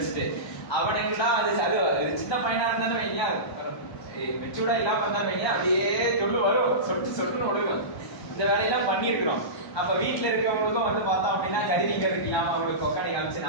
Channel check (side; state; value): right; late; 1.2 ms